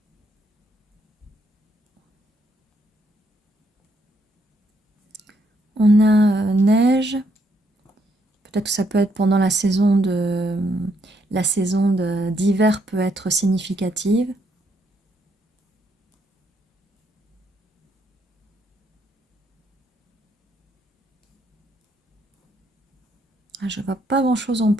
On a neige. Peut-être que ça peut être pendant la saison d'hiver peut être significative. Je ne vois pas grand-chose en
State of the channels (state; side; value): normal; both; correlation 0.73